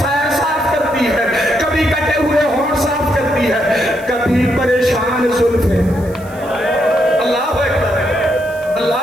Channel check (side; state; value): right; noise; hiss, 23 dB below the sound